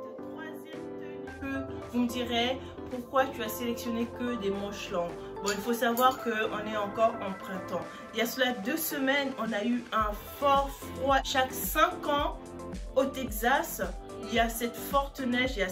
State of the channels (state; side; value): identical; both; correlation 1.00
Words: troisième tenue que vous me direz pourquoi tu as sélectionné que des manches longues. Bon, il faut savoir qu'on est encore en printemps. Il y a cela 2 semaines, on a eu un fort froid. Chaque 5 ans au Texas, il y a cette forte neige, il y a